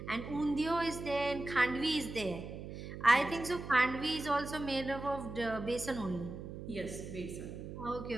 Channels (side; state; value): right; noise; hum, 9 dB below the sound